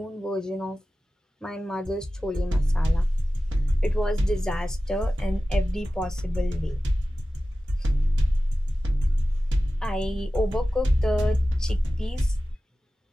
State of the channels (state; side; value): normal; both; correlation 0.95